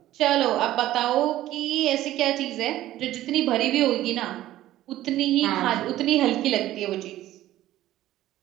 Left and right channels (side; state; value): left; quieter; 14.3 dB